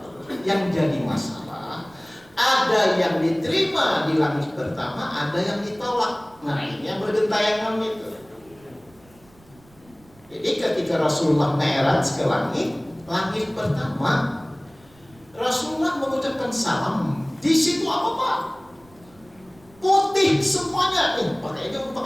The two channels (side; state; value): right; noise; rumble, 28 dB below the sound